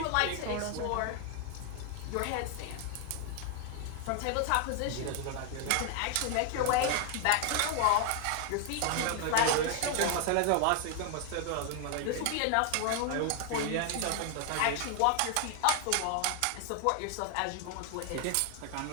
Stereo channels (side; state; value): both; different; correlation 0.00